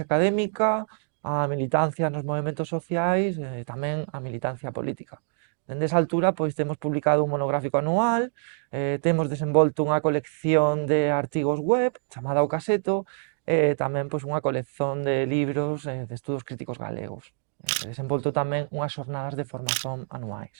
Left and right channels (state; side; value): silent; left; digital silence